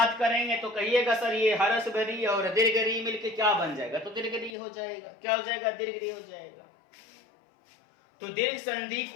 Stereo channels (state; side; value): drops out; right; at 4.5 s